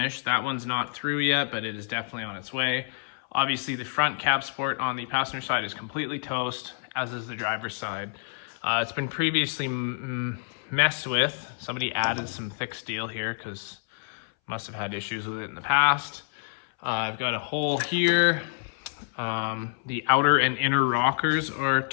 That one's not through yet, but it is definitely on its way. Obviously the front cab support on the passenger side is completely toast, as is the driver's side. It's been previously messed with. Somebody added some thick steel here because must have had issues with it in the past. I've got a hole here. The outer and inner rockers are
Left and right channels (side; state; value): right; silent; 59 dB below the other